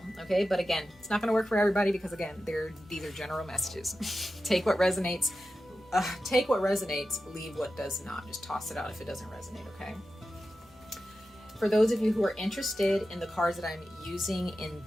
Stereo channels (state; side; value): normal; both; correlation 0.92